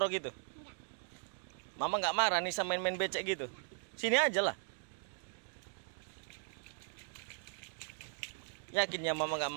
gitu? Mama nggak marah nih sama main becek gitu. Sini aja lah. Yakin ya mama nggak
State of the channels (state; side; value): silent; left; digital silence